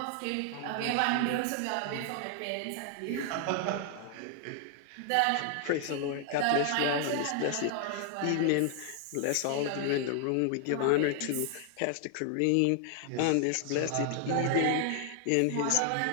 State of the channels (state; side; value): different; both; correlation 0.00